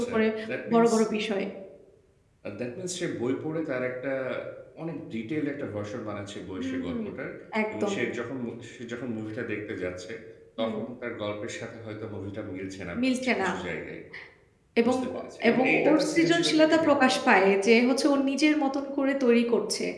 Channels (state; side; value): identical; both; correlation 1.00